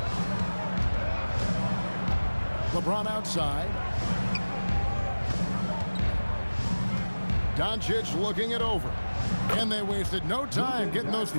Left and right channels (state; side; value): inverted; both; correlation -1.00